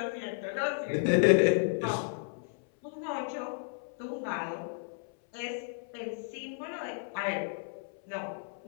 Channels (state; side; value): silent; right; 56 dB below the other